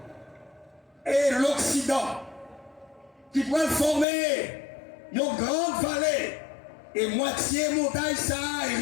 et l'Occident qui pourrait former une grande vallée et moitié montagne ça et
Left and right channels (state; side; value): drops out; right; at 4.0 s